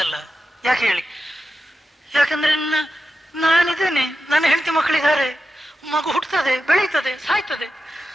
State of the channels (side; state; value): both; normal; correlation 0.91